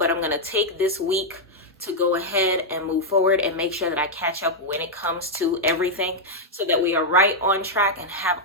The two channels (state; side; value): normal; both; correlation -0.03